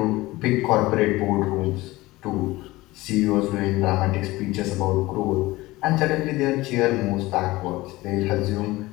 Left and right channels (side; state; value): right; quieter; 19.5 dB